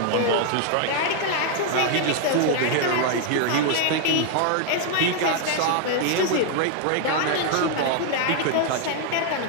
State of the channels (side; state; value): both; different; correlation 0.00